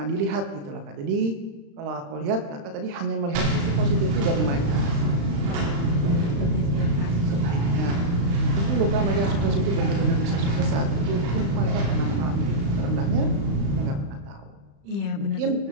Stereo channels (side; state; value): left; late; 35 ms